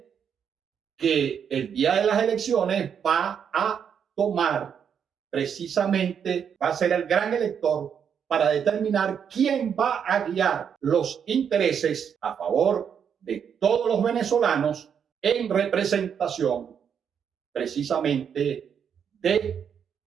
que el día de las elecciones va a tomar precisamente, va a ser el gran elector para determinar quién va a guiar los intereses a favor de todos los venezolanos en representación precisamente de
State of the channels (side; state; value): left; quieter; 7.7 dB